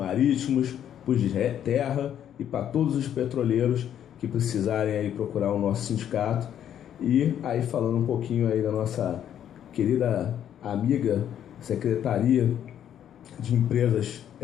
para os de terra e para todos os petroleiros que precisarem aí procurar o nosso sindicato. E aí, falando um pouquinho aí da nossa querida amiga Secretaria de Empresas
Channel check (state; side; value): quieter; right; 10.0 dB